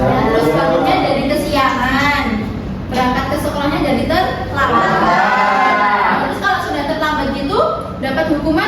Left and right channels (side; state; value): both; identical; correlation 1.00